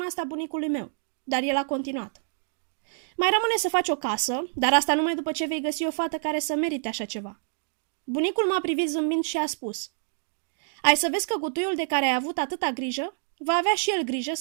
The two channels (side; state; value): left; silent; digital silence